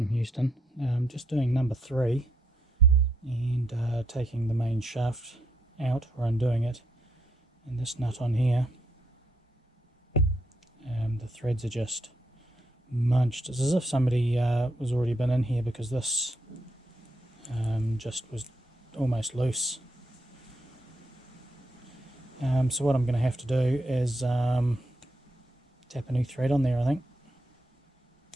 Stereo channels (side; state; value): both; normal; correlation 0.77